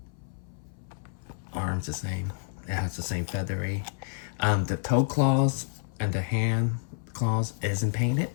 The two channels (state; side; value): silent; right; 58 dB below the other